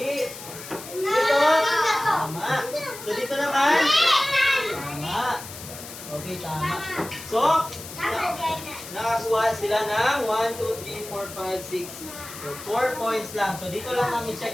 Dito. Tama. So, dito naman. Tama. Okay, tama. So, nakakuha sila ng 1, 2, 3, 4, 5, 6. So, 4 points lang. So, dito lang namin check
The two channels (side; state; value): left; noise; hiss, 13 dB below the sound